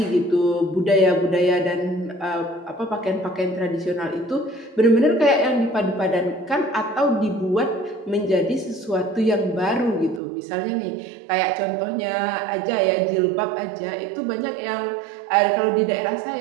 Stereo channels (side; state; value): left; drops out; at 10.2 s